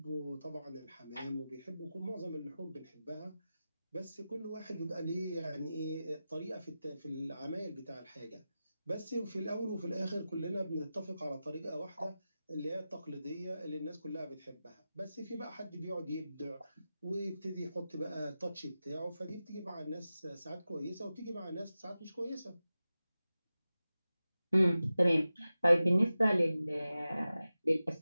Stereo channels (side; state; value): both; inverted; correlation -0.94